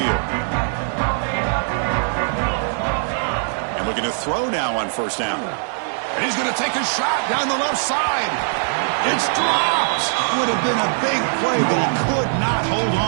And looking to throw now on 1st down. And he's going to take a shot down the left side. It's dropped. Would have been a big play, but he could not hold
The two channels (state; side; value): silent; left; digital silence